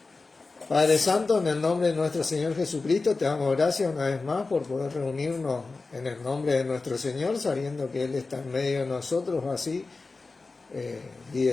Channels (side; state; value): right; quieter; 3.8 dB